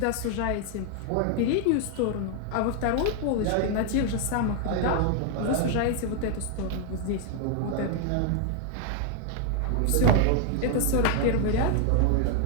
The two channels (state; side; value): different; both; correlation 0.00